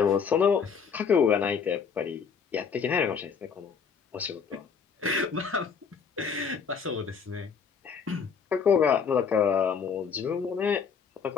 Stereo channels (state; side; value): quieter; right; 6.3 dB